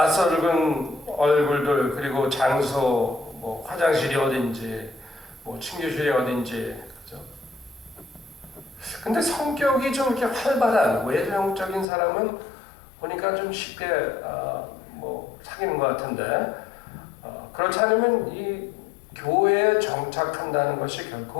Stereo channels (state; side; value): drops out; right; at 11.9 s